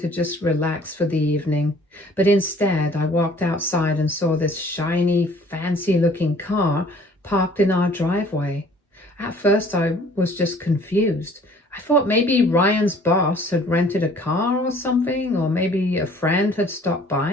just relax for the evening, but instead I walked outside and saw this shiny, fancy-looking car parked in our driveway. At first I was just confused. I thought maybe Ryan's boss had rented a car or something, or maybe a friend had stopped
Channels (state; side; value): normal; both; correlation 0.54